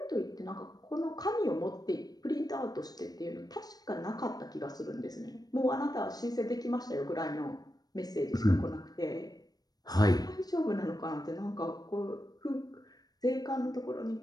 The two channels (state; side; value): late; right; 0.19 ms